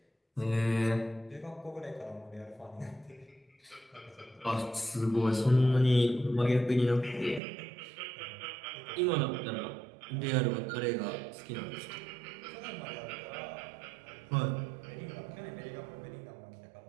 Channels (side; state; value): left; drops out; at 7.4 s